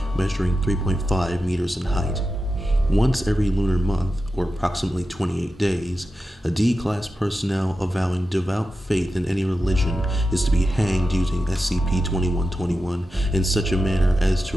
measuring 3.5 meters in height. Once every lunar month, or approximately 28 days, a D-Class personnel avowing devout faith in any religion is to be hanged using SCP-2121 in such a manner as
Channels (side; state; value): both; normal; correlation 0.91